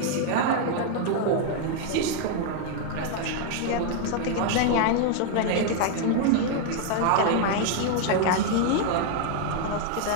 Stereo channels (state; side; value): different; both; correlation 0.00